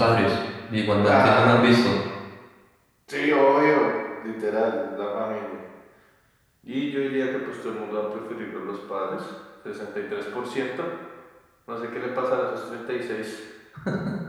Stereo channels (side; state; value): both; identical; correlation 1.00